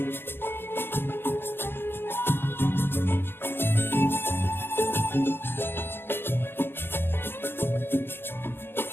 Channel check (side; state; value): right; late; 0.11 ms